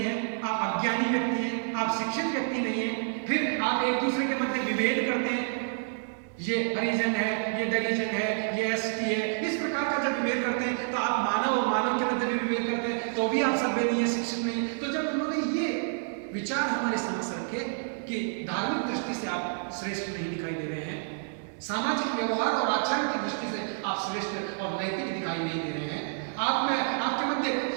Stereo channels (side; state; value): left; silent; digital silence